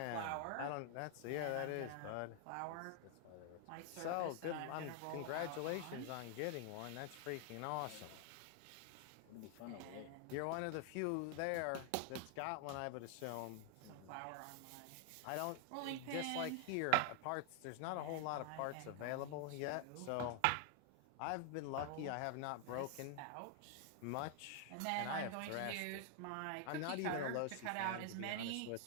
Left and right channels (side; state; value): both; different; correlation 0.00